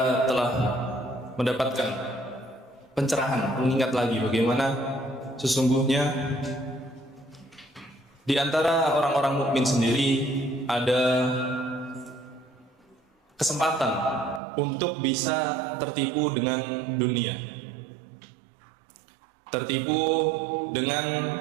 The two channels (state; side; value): drops out; left; at 14.4 s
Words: telah mendapatkan pencerahan, mengingat lagi bagaimana sesungguhnya di antara orang-orang mukmin sendiri ada kesempatan untuk bisa tertipu dengan dunia, tertipu dengan